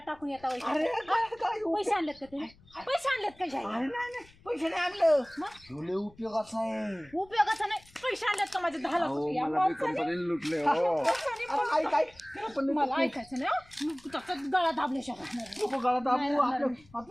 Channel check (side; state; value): left; noise; rumble, 26 dB below the sound